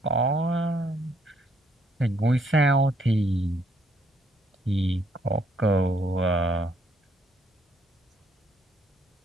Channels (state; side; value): normal; both; correlation 0.69